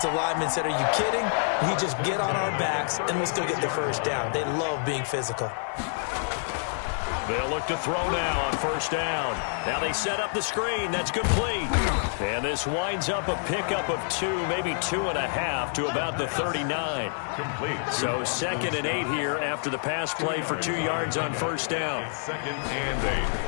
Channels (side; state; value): right; silent; digital silence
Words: lineman said, are you kidding? We just get on our backs and we'll still get the 1st down. They love being physical. They'll look to throw now on 1st down. Now they set up the screen. That's complete. And this winds up a pickup of 2, maybe 2.5 to about the 39. Complete. So 2nd and 8 here after the pass play for 2 yards on 1st down. 2nd and 8